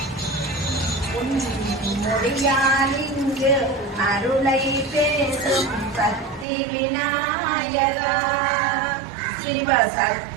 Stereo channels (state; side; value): drops out; left; at 6.5 s